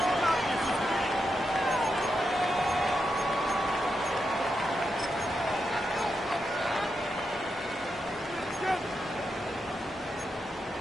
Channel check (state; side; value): normal; both; correlation 0.85